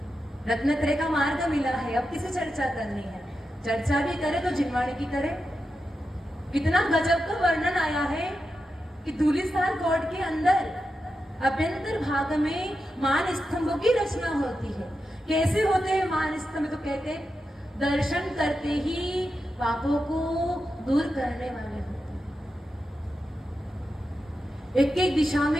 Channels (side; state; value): both; normal; correlation 0.89